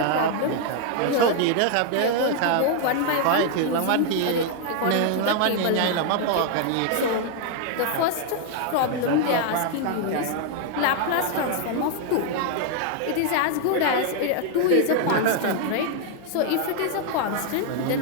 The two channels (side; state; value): both; different; correlation 0.00